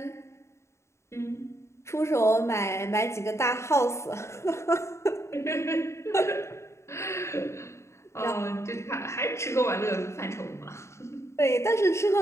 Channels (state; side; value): late; right; 0.13 ms